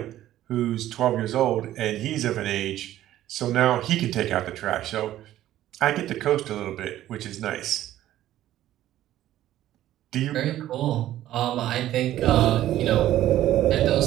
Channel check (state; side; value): quieter; left; 13.4 dB